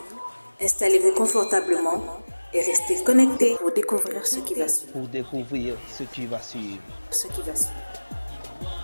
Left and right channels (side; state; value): both; inverted; correlation -1.00